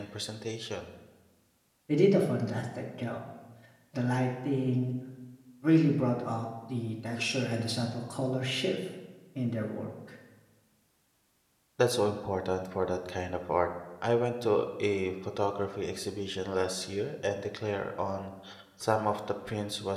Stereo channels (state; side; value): identical; both; correlation 1.00